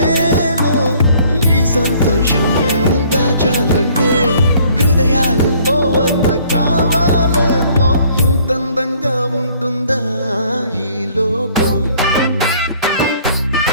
ఈ సంతోషం దాచాలంటే హృదయాలు ఓ వంద కావాలేమో ఇంతందంగా ఉంటుందా ఈ లోకం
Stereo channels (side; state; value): both; inverted; correlation -0.59